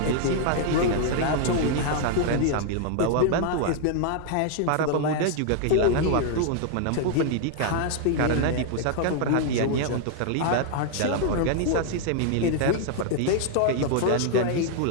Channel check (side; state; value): both; different; correlation 0.00